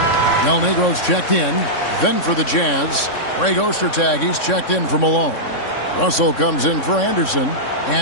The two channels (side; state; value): right; late; 3.6 ms